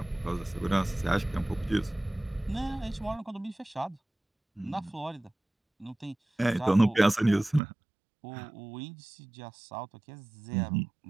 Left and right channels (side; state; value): left; drops out; at 7.6 s